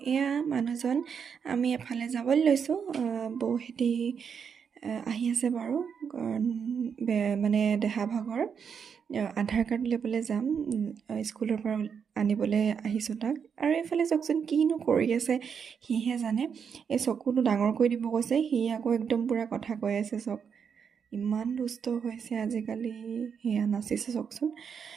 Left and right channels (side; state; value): left; quieter; 6.9 dB